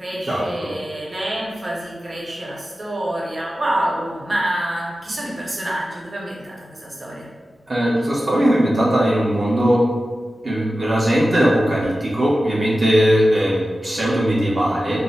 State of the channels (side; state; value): both; normal; correlation 0.93